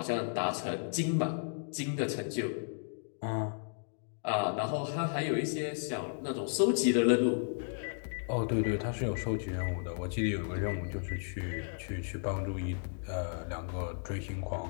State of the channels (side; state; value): right; silent; digital silence